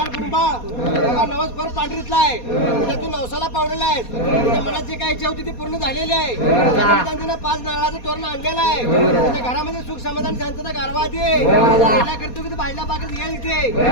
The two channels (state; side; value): late; right; 4.2 ms